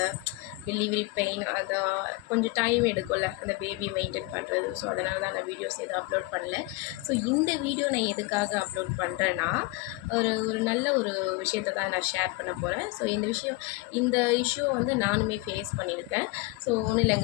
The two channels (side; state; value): right; quieter; 21.4 dB